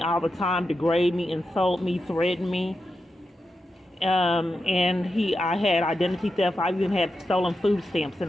all the time, degrade me, insult me, threaten me. I had identity theft. I even had stolen food stamps in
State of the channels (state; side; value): normal; both; correlation 0.88